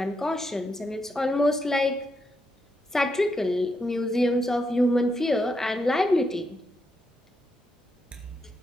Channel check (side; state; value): both; normal; correlation 0.82